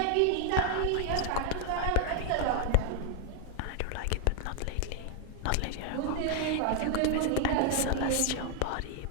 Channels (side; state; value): both; different; correlation 0.00